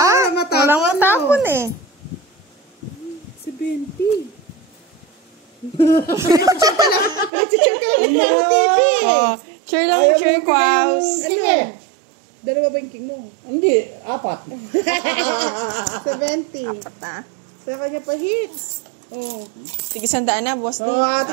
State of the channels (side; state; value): left; drops out; at 7.3 s